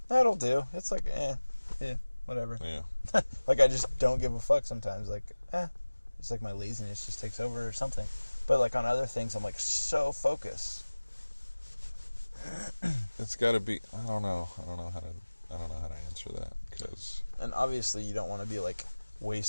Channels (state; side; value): inverted; both; correlation -1.00